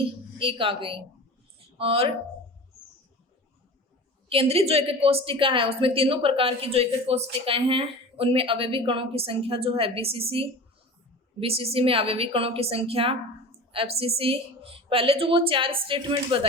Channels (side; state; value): both; normal; correlation 0.35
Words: 1 आ गई। और केंद्रित जो एक कोष्टिका है उसमें तीनों प्रकार की जो एक कोष्टिकाएं हैं उनमें अवयवी कणों की संख्या जो है बीसीसी में अवयवी कणों की संख्या, एफसीसी पहले जो वो 4 स्टेटमेंट